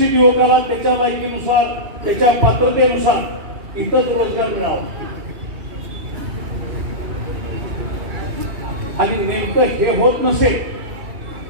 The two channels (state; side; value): late; left; 2.8 ms